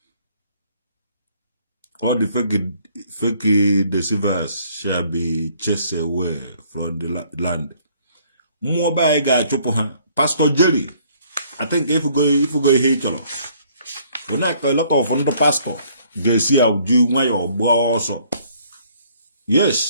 All the fake deceivers shall be chased away from the land. Mmụọ be anyị ga-achụpụ ha. Pastor Jerry, I think if you go ihe ịchọrọ a lot of ndị pastor ga-esi auju nwayọ gbaa ọsọ.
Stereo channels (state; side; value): inverted; both; correlation -0.62